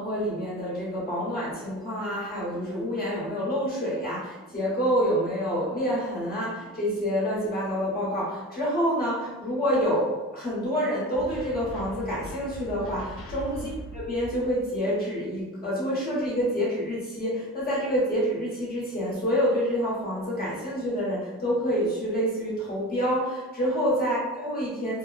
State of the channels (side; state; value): both; normal; correlation 0.32